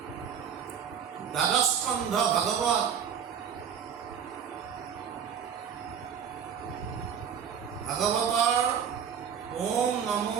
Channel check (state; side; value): quieter; left; 7.8 dB